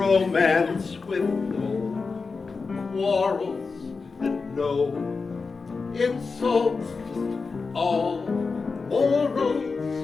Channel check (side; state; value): right; quieter; 4.5 dB